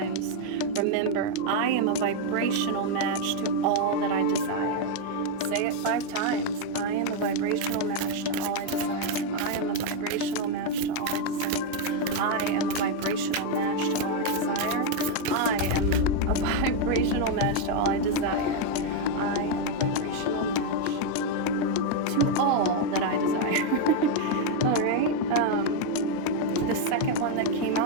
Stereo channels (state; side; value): different; both; correlation 0.01